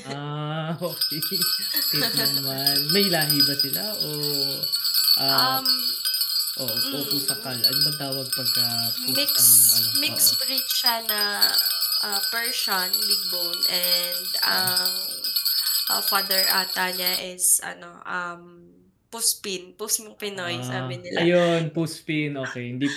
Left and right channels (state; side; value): identical; both; correlation 1.00